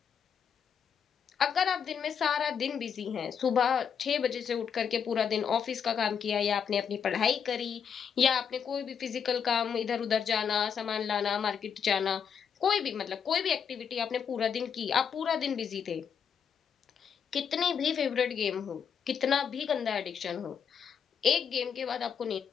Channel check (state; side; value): quieter; right; 7.3 dB